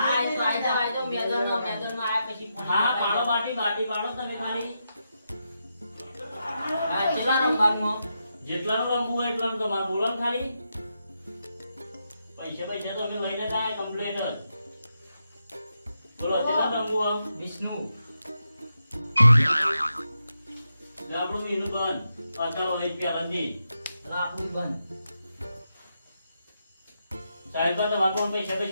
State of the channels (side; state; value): both; inverted; correlation -0.85